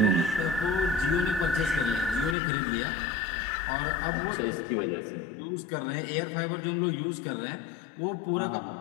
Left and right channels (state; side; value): drops out; right; at 2.4 s